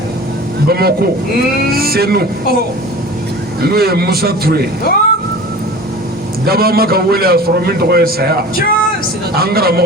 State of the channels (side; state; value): both; normal; correlation 0.38